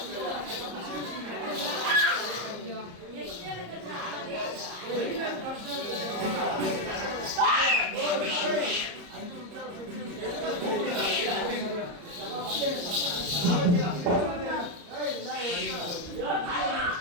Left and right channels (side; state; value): left; late; 34 ms